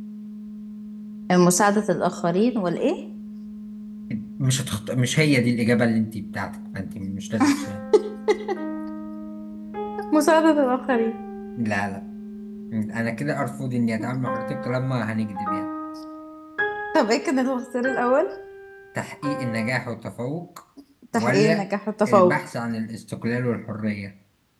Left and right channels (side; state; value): both; identical; correlation 1.00